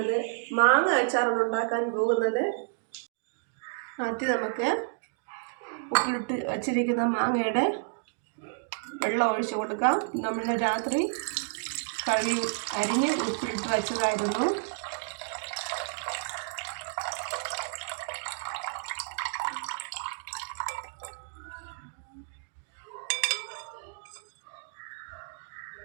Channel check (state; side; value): silent; left; digital silence